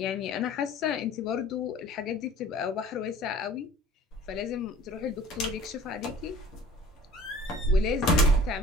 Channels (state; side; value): normal; both; correlation 0.48